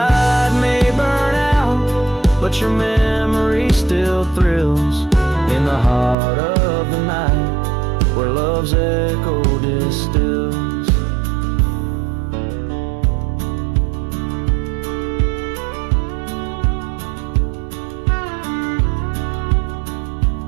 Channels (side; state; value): left; drops out; at 6.2 s